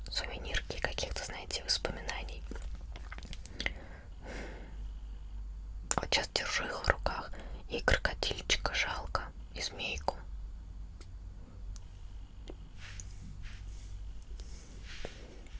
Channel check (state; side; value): identical; both; correlation 1.00